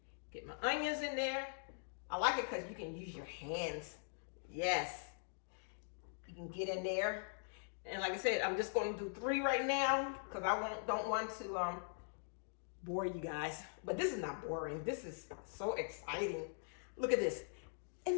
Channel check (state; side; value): silent; right; digital silence